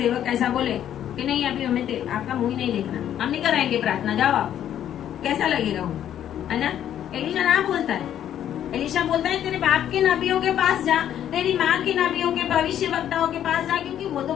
ऐसा बोले कि नहीं अभी हमें आपका मुंह ही नहीं देखना, हम नहीं कराएंगे प्रार्थना, जाओ आप, कैसा लगेगा वो, है ना? एलीशा ना बोलता है, एलीशा बोलता है तेरे बाप के नबियों के पास जा, तेरी माँ के नबियों के भविष्यवक्ताओं के पास जा, क्योंकि वो तो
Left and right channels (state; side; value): quieter; right; 10.5 dB